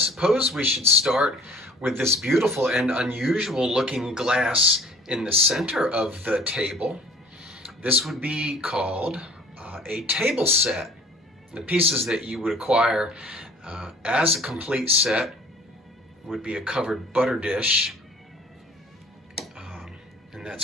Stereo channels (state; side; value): normal; both; correlation 0.50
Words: we should start with this beautiful and unusual looking glass in the center of the table. This would be called a table set. The pieces that you would acquire as a complete set would be a covered butter dish, and